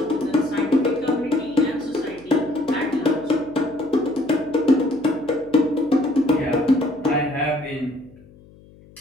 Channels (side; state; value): left; noise; hum, 25 dB below the sound